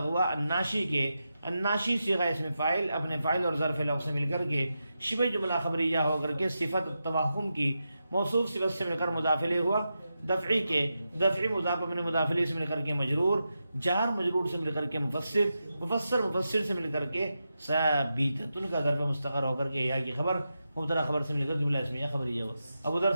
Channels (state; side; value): inverted; both; correlation -0.89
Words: الناشی کے الناشی صیغہ اسم فاعل اپنے فاعل اور ظرف لغو سے مل کر کے شبہ جملہ خبریہ ہو کر کے صفت التوہم کی موصوف صفت سے مل کر مضاف الیہ ہوا دفعی کے دفعی مضاف اپنے مضاف الیہ سے مل کر کے مجرور جار مجرور سے مل کر کے مفسر سے مل کر کے ثابت ان کا ظرف مستقر ہو کر کے یا کی خبر مبتدا خبر سے مل کر جملہ اسمیہ خبریہ ہوا. اب ادھر